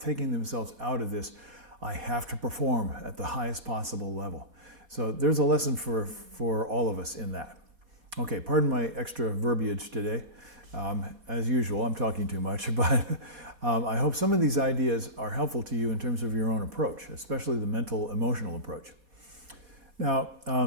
themselves out of this, I have to perform at the highest possible level. So there's a lesson for all of us in that. Okay, pardon my extra verbiage today. As usual, I'm talking too much, but I hope some of these ideas are helpful to you in terms of your own approach, especially the mental, emotional approach. Now,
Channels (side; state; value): left; late; 4.2 ms